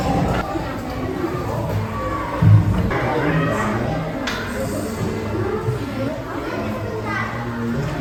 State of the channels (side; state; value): both; identical; correlation 1.00